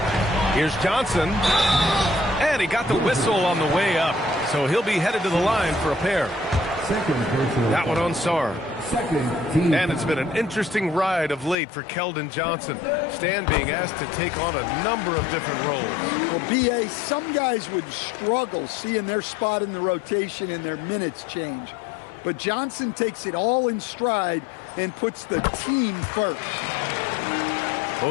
Here's Johnson. And he got the whistle on the way up. So he'll be headed to the line for a pair. That one on Sarr. And it's been an interesting ride of late for Keldon Johnson. Stan being asked to take on a number of different roles. Well, B.A., some guys would struggle seeing their spot in the rotation and their minutes change. But Johnson takes it all in stride and puts the team first.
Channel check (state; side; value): drops out; right; at 11.6 s